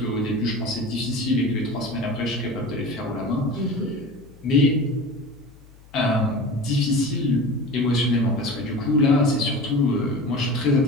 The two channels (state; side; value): noise; left; hum, 24 dB below the sound